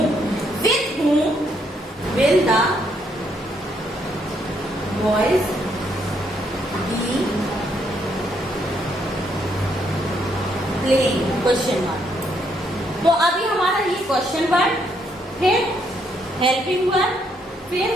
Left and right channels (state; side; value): normal; both; correlation 0.73